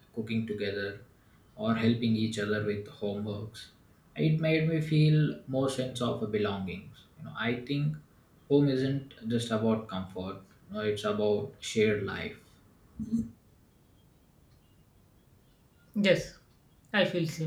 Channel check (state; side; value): identical; both; correlation 1.00